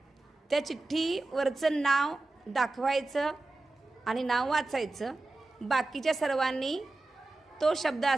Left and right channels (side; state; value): left; quieter; 3.0 dB